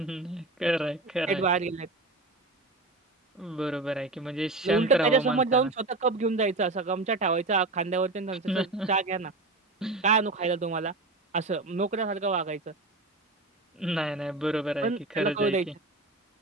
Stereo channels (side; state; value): left; quieter; 3.2 dB